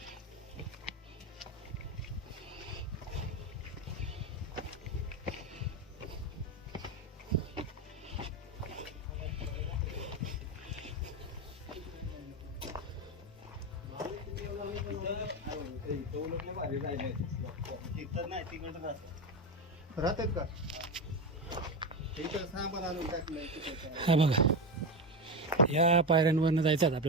राहतात का सामान आणून टाकलं. हा बघा या पायऱ्यांवरनं जायचं आहे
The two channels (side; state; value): both; normal; correlation 0.16